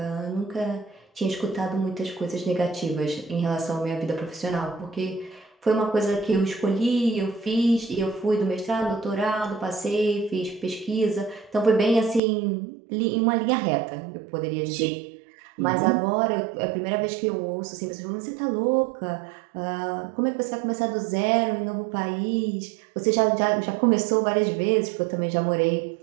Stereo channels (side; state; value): left; drops out; at 12.2 s